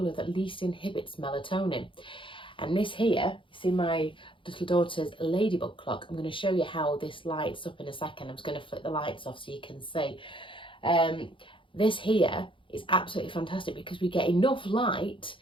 that least inhibits melatonin. And this here, you see my little daughter's ladybug clock. I'm going to show you how this lights up in a second. I'm just going to flick the lights off so you can see. This here is absolutely fantastic because we get enough light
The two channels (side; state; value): right; late; 0.25 ms